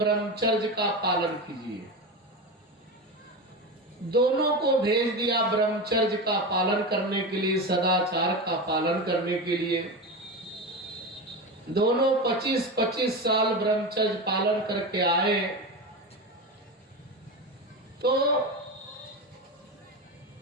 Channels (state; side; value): normal; both; correlation 0.21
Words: का पालन कीजिए। दोनों को भेज दिया ब्रह्मचर्य का पालन करने के लिए, सदाचार का पालन करने के लिए। दोनों 25-25 साल ब्रह्मचर्य पालन करके आए। तो